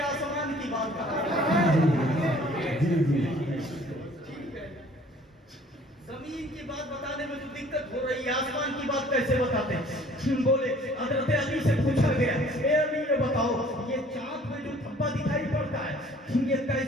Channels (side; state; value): both; normal; correlation 0.54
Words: کی بات ٹھیک ہے، زمین کی بات بتانے میں تو دقت ہو رہی ہے، آسمان کی بات کیسے بتاتے ہیں؟ بولے حضرت علی سے پوچھا گیا اے علی یہ بتاؤ یہ چاند میں جو دھبا دکھائی پڑتا ہے یہ